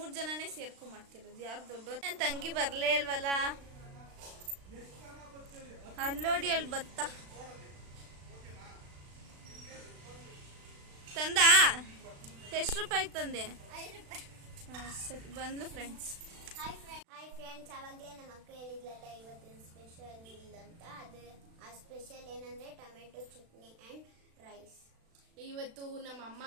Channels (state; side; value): late; left; 36 ms